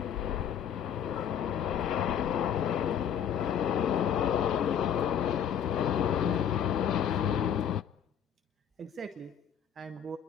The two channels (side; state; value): right; quieter; 8.7 dB